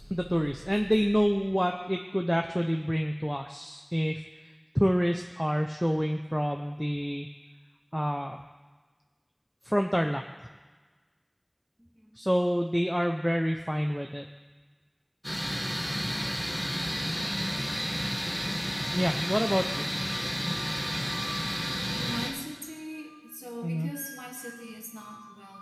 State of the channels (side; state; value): both; identical; correlation 1.00